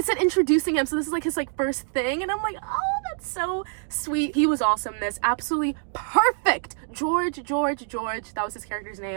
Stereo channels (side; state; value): left; silent; 59 dB below the other